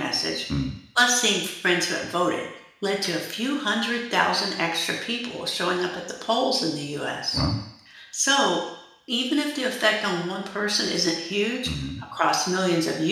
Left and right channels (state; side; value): identical; both; correlation 1.00